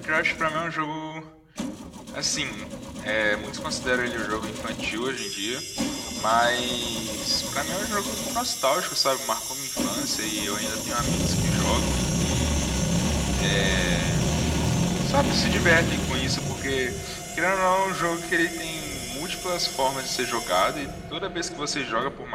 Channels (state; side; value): identical; both; correlation 1.00